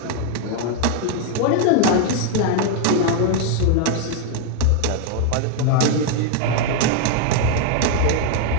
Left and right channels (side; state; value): both; different; correlation 0.00